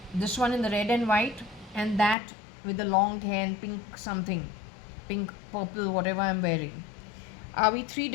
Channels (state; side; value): drops out; right; at 2.1 s